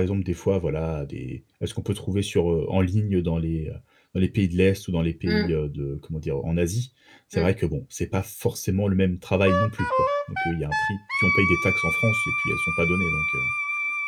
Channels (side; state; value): both; identical; correlation 1.00